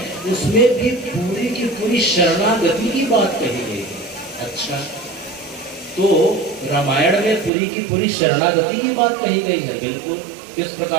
उसमें भी पूरी की पूरी शरणागति की बात कही गई है। अच्छा, तो रामायण में पूरी की पूरी शरणागति की बात कही गई है। बिल्कुल, किस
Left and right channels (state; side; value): drops out; left; at 7.5 s